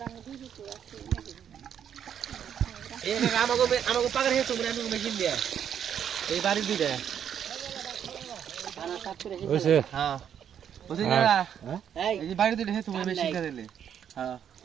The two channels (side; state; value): left; quieter; 8.8 dB